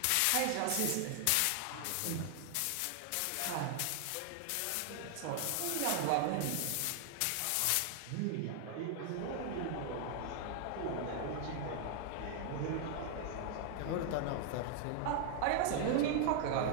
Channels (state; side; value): different; both; correlation 0.00